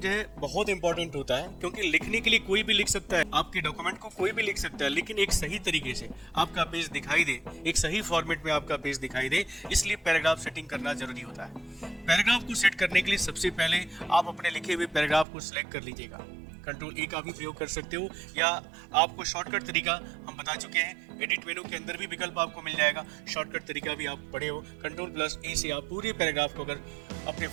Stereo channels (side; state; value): left; drops out; at 15.2 s